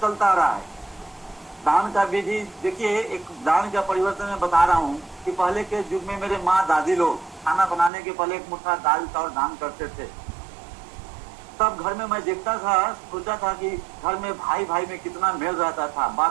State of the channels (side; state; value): left; drops out; at 7.9 s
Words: चलता रहा है। दान का विधि देखिए, एक दान का परिवर्तन मैं बता रहा हूँ कि पहले के युग में मेरे माँ दादी लोग खाना बनाने के पहले एक मुट्ठा दाल चावल दान करते थे। तब घर में मैं देखता था, सोचा था कि घर में भाई भाई में कितना मेल रहता था,